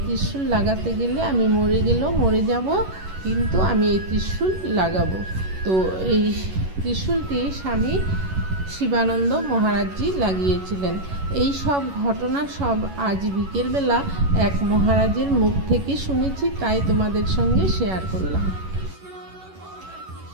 ত্রিশূল লাগাতে গেলে আমি মরে গেলেও মরে যাব, কিন্তু আমি এই ত্রিশূল লাগাবো। তো এই ত্রিশূলটি স্বামী শিবানন্দ মহারাজজি লাগিয়েছিলেন। এই সব ঘটনা সব আজ বিকেলবেলা এক মহারাজের মুখ থেকে শুনেছি, তাই তোমাদের সঙ্গে শেয়ার করলাম।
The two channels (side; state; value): left; late; 11 ms